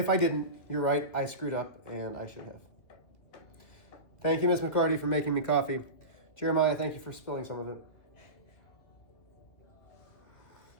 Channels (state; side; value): late; right; 2.7 ms